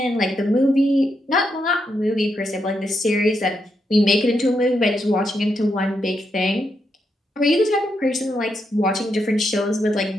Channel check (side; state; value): both; normal; correlation 0.82